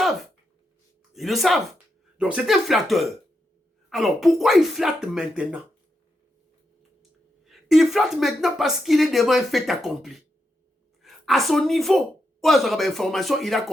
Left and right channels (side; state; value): both; normal; correlation 0.84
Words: Ils le savent. Donc c'est un flatteur. Alors pourquoi il flatte maintenant? Il flatte maintenant parce qu'il est devant un fait accompli. À son niveau, information, il a